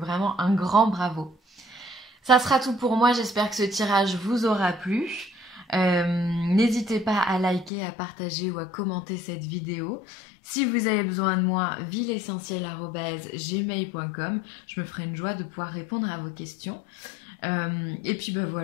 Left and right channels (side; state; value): right; drops out; at 7.7 s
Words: un grand bravo. Ça sera tout pour moi. J'espère que ce tirage vous aura plu. N'hésitez pas à liker, à partager ou à commenter cette vidéo. Si vous avez besoin de moi, villeessentielle@gmail.com. Je me ferai une joie de pouvoir répondre à vos questions. Et puis ben